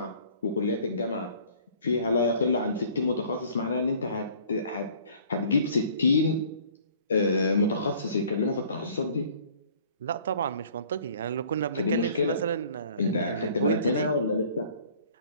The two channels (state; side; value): inverted; both; correlation -0.53